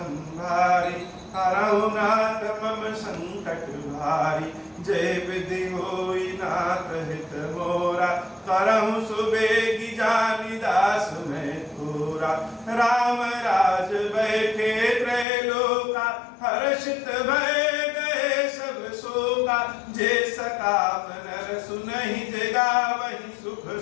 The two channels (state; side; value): drops out; right; at 15.2 s